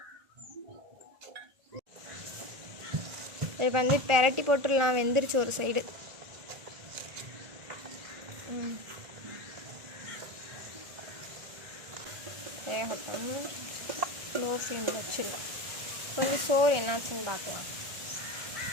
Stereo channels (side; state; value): left; late; 1.4 ms